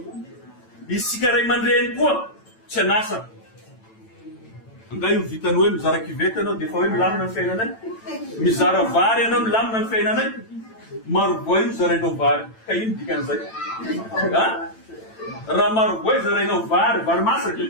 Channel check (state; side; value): late; right; 9.0 ms